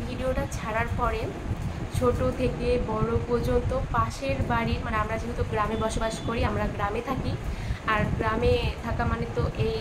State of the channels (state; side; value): identical; both; correlation 1.00